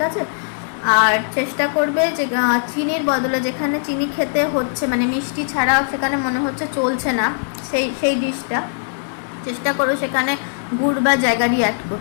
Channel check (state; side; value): silent; right; digital silence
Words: আছে। আর চেষ্টা করবে যে চিনির বদলে, যেখানে চিনি খেতে হচ্ছে মানে মিষ্টি ছাড়া সেখানে মনে হচ্ছে চলছে না, সেই ডিশটা চেষ্টা করো সেখানে গুড় বা জ্যাগারি অ্যাড